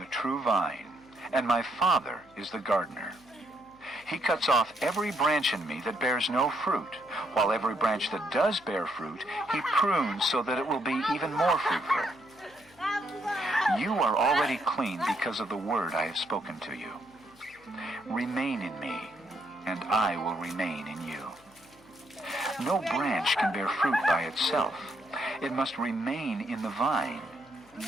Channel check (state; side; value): noise; left; hum, 28 dB below the sound